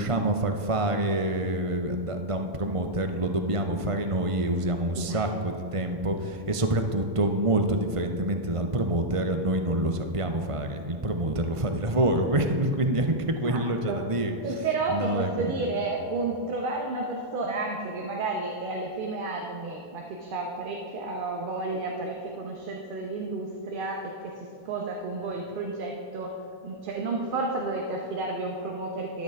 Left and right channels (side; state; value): left; late; 1.5 ms